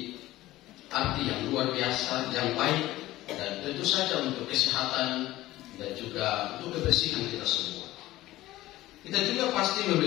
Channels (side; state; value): right; quieter; 16.5 dB